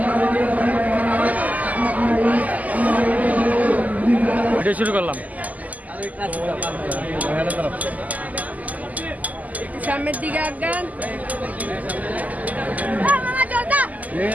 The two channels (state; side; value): late; left; 0.078 ms